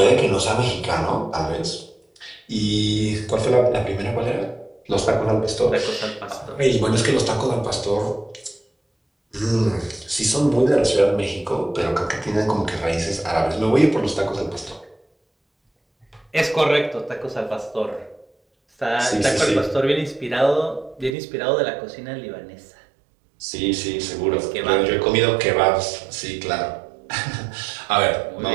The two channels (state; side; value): drops out; left; at 21.2 s